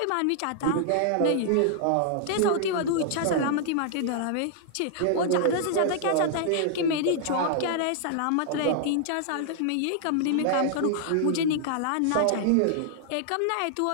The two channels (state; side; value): different; both; correlation -0.01